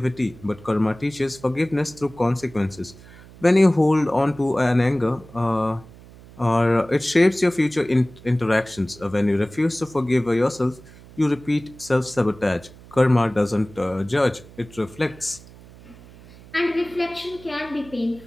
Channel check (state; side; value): noise; right; hum, 21 dB below the sound